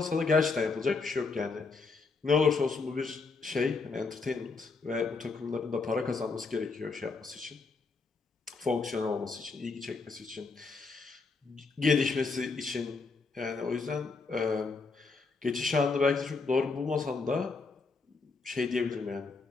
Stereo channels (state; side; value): quieter; right; 4.3 dB